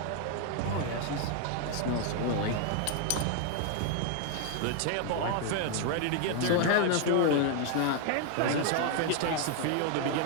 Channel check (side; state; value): both; different; correlation 0.00